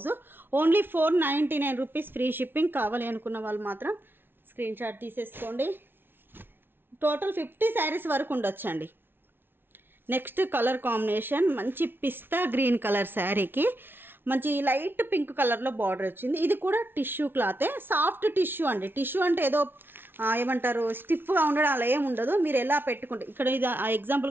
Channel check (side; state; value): left; late; 0.10 ms